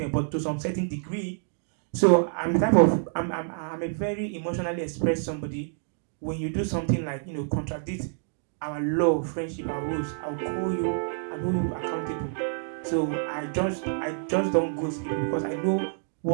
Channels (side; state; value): left; silent; digital silence